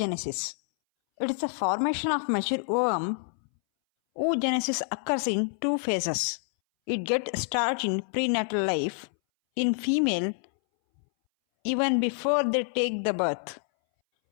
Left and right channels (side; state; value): right; silent; 60 dB below the other